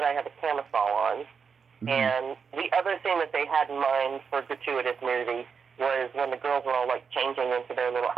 I had a camisole on. Mm-hmm. And the other thing that they had in mind for gratuitous nudity was when the girls were all, changing into their little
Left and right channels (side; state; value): left; quieter; 6.1 dB